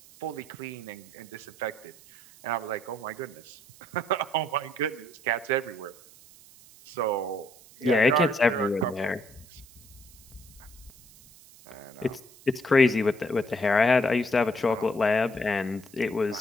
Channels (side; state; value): right; noise; hiss, 23 dB below the sound